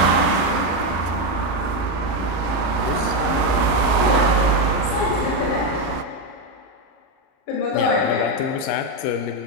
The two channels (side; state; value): right; late; 37 ms